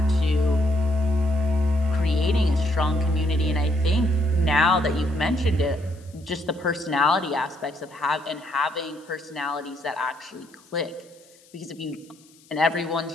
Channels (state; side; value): noise; left; hiss, 28 dB below the sound